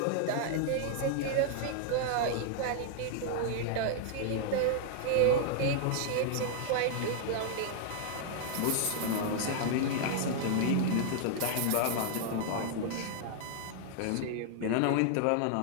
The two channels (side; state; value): both; different; correlation -0.01